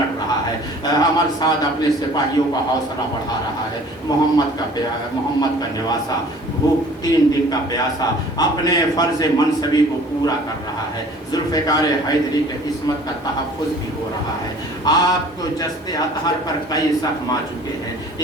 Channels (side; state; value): both; normal; correlation 0.50